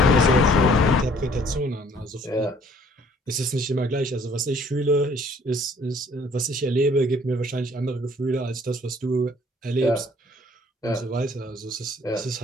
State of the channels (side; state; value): both; normal; correlation 0.59